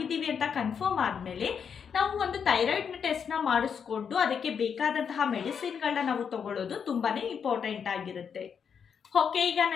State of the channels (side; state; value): right; quieter; 7.0 dB